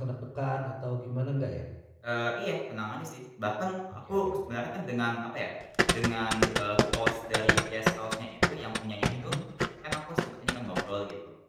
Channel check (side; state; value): both; identical; correlation 1.00